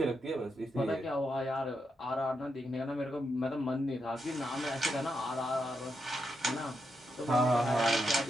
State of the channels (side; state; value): both; normal; correlation 0.83